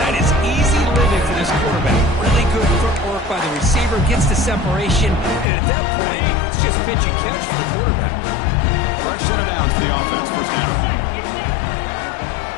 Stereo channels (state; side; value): drops out; right; at 5.5 s